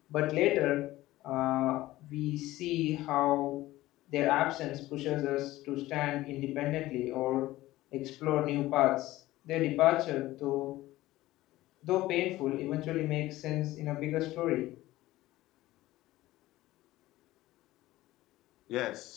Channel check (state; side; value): quieter; right; 16.8 dB